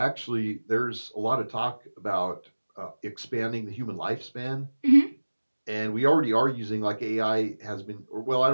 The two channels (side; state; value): both; inverted; correlation -1.00